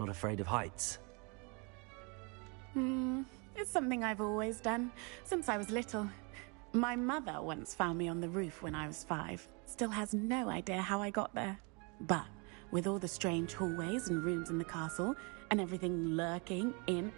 afraid of heights. It's something I've always done, since I was little. My mother once found me on the roof when I was 5. Still has no idea how I got there. But with all the strange hallways and rooms in the castle, and everything lurking in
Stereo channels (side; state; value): left; quieter; 32.3 dB